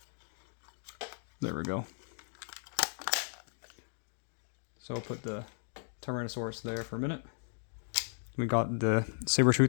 There we go. So I'll put the Tyrannosaurus there for a minute. We got the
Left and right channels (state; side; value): silent; right; digital silence